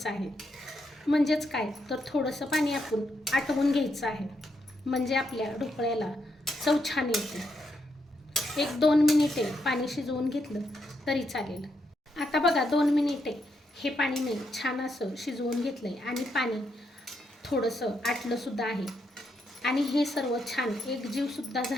आहे. म्हणजेच काय तर थोडंसं पाणी आपण आटवून घ्यायचं आहे, म्हणजे आपल्या ढोकळ्याला चव छान येते. 1-2 मिनिटे पाणी शिजवून घेतलं तरी चालेल. आता बघा 2 मिनिटे हे पाणी मी छान असं शिजवून घेतलं आहे आणि पाणी थोडंसं आटलंसुद्धा आहे आणि हे सर्व छान एकजीवसुद्धा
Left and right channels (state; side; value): normal; both; correlation 0.80